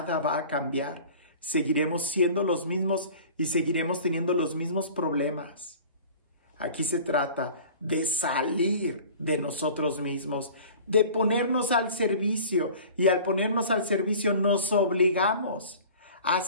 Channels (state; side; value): inverted; both; correlation -0.43